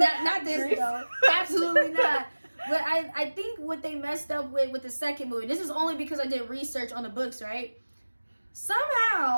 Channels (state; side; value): inverted; both; correlation -1.00